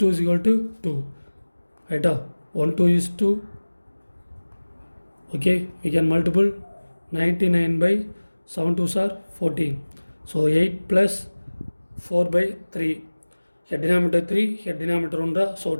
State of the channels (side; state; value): both; inverted; correlation -1.00